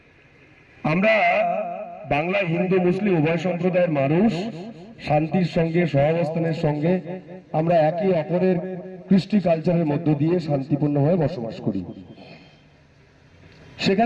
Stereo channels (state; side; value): identical; both; correlation 1.00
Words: আমরা বাংলা হিন্দু মুসলিম উভয় সম্প্রদায়ের মানুষ শান্তির সঙ্গে সহাবস্থানের সঙ্গে আমরা একে অপরের কৃষ্টি কালচারের মধ্য দিয়ে শান্তিপূর্ণভাবে বসবাস করি।